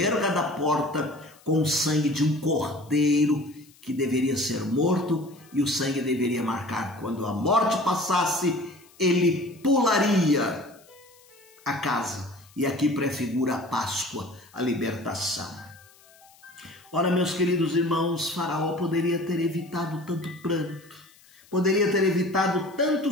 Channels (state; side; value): noise; left; hiss, 27 dB below the sound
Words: da porta com o sangue de um cordeiro que deveria ser morto, e o sangue deveria marcar. Quando a morte passasse, ele pularia a casa. E aqui prefigura a Páscoa, a libertação. Ora, meus queridos irmãos, Faraó poderia ter evitado tanto pranto, poderia ter evitado tanto